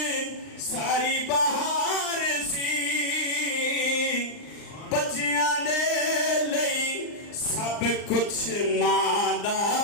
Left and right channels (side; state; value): right; late; 39 ms